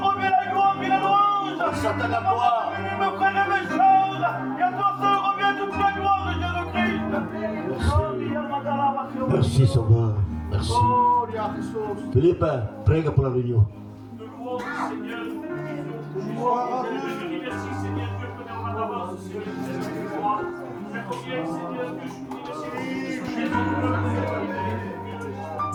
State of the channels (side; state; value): both; identical; correlation 1.00